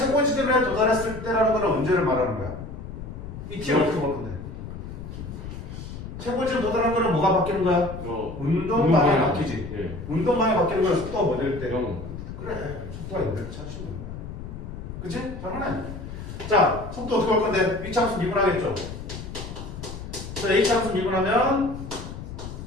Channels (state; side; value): noise; left; rumble, 10 dB below the sound